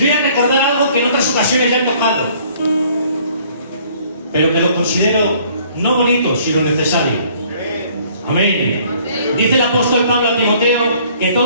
a recordar algo que en otras ocasiones ya he tocado, pero que lo considero no bonito, sino necesario. Amén. Dice el apóstol Pablo a Timoteo que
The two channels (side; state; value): both; inverted; correlation -0.58